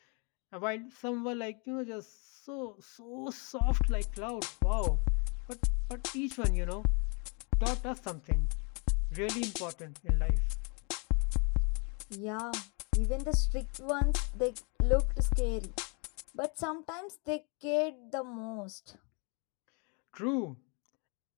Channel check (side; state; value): right; quieter; 35.0 dB